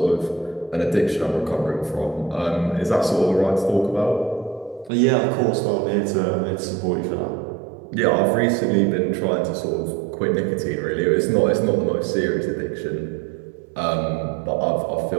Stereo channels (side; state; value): left; drops out; at 4.9 s